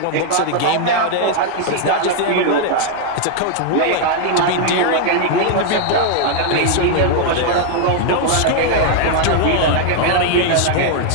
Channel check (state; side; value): different; both; correlation 0.00